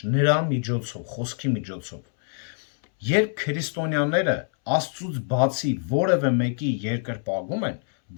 նրա միջոցով, խոսքի միջոցով։ Երբ քրիստոնյաները Աստծուց բացի որևէ մեկի երկրպագում են,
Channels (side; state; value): right; silent; 62 dB below the other